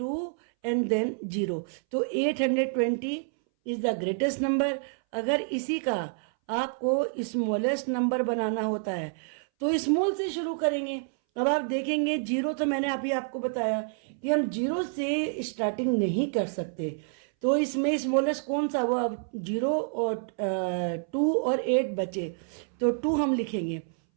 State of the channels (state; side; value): silent; left; 59 dB below the other